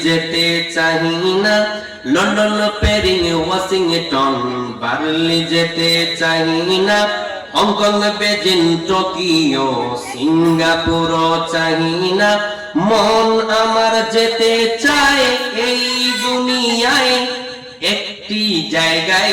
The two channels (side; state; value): both; identical; correlation 1.00